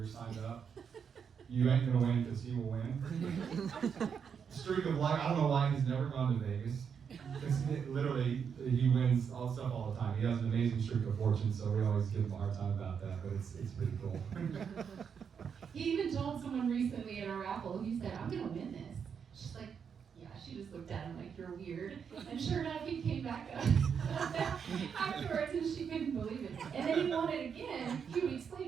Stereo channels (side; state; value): left; quieter; 6.9 dB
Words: signed up, you ain't gonna win because he will win. Streak of luck, I don't know why he's never gone to Vegas. Because literally, he wins all stuff all the time. He has an amazing streak of fortune, so we always give him a hard time about that, but it's pretty cool. He even told someone recently at a raffle, he said, I'm gonna win this. She's like, yeah, she just looked at him like, you're weird. And sure enough, he came back up afterwards, and she couldn't believe it. And then he won it again a few weeks